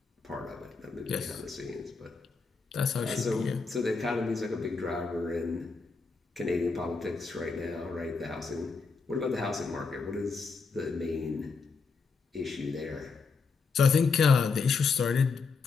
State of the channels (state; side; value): quieter; right; 4.7 dB